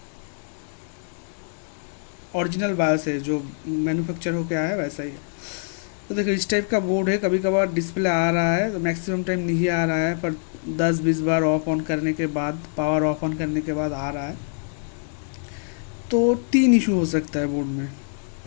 ओरिजिनल बायोस है, जो मैन्युफैक्चर होके आया है वैसा ही है। तो देखो इस टाइप का बोर्ड है, कभी कभार डिस्प्ले आ रहा है तो मैक्सिमम टाइम नहीं आ रहा है, पर 10-20 बार ऑफ ऑन करने के बाद, पावर ऑफ ऑन करने के बाद आ रहा है। तो 3 इशू हो सकता है बोर्ड में।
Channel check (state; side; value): silent; right; 62 dB below the other